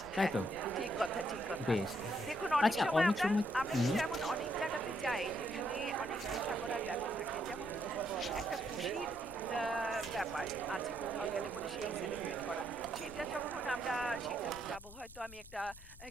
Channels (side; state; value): left; noise; rumble, 18 dB below the sound